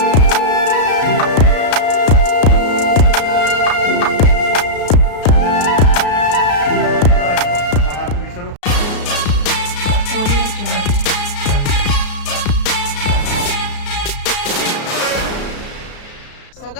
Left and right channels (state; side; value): late; right; 33 ms